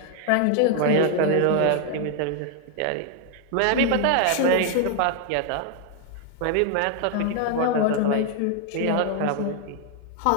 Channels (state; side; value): different; both; correlation 0.00